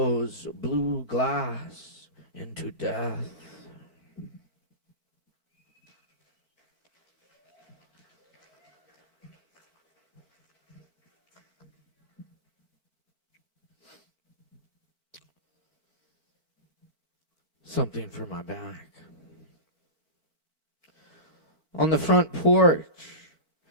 blue glass into death. Something for my back. On the front porch,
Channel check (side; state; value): left; late; 4.5 ms